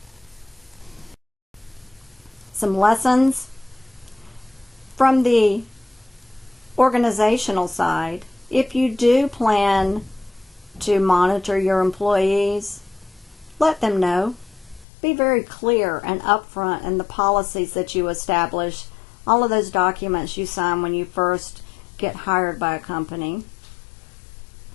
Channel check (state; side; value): drops out; right; at 14.9 s